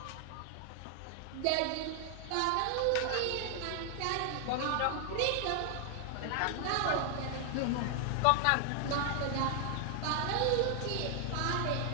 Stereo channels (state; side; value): different; both; correlation 0.00